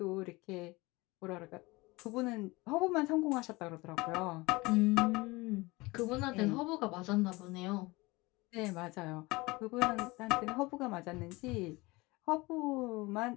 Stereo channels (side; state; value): right; quieter; 22.8 dB